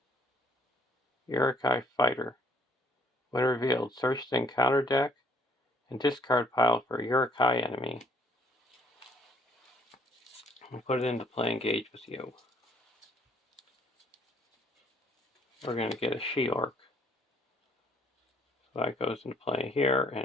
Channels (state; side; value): normal; both; correlation 0.63